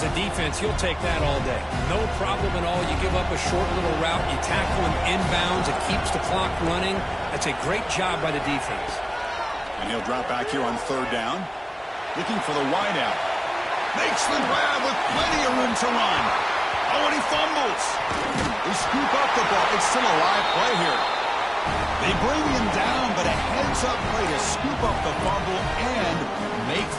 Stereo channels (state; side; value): identical; both; correlation 1.00